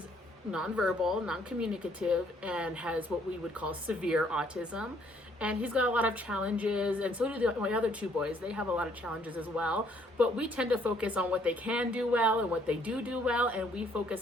nonverbal, non-communicative, and has what we would call severe autism. And he's got a lot of challenges, and so do my other 2 boys. They have a lot of challenges as well, but we tend to focus on what they can do well and what they do well, and we focus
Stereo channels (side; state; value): both; normal; correlation 0.65